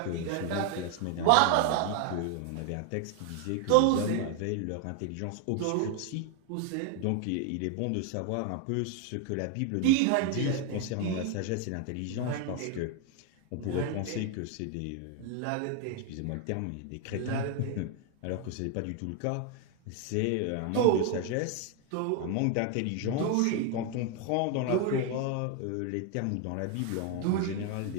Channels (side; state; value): both; different; correlation 0.01